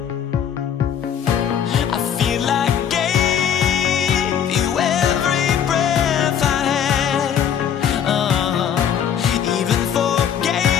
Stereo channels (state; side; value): quieter; right; 8.7 dB